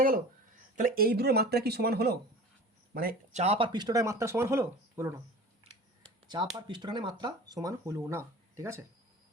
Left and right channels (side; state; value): both; normal; correlation 0.39